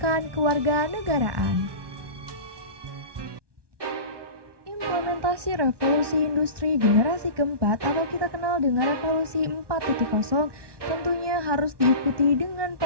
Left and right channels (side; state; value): left; late; 1.2 ms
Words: kewarganegaraan. Implementasi revolusi industri generasi keempat atau kita kenal dengan revolusi 4.0 tentunya harus diikuti dengan